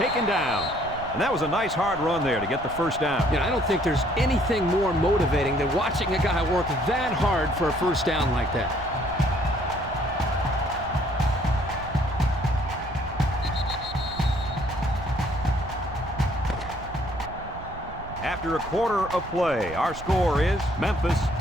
down. And that was a nice hard run there to get the first down. You know, I don't think there's anything more motivating than watching a guy work that hard for a first down like that. After a quarter of play, our score is Memphis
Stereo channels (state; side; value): noise; right; rumble, 13 dB below the sound